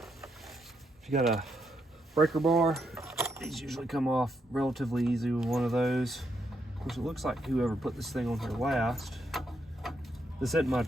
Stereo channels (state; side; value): normal; both; correlation 0.79